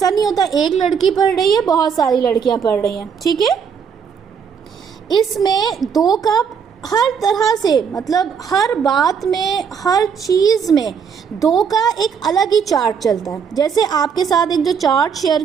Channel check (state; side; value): quieter; left; 6.8 dB